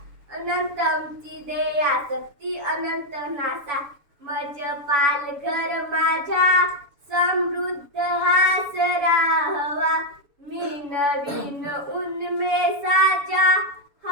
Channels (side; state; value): left; late; 7.0 ms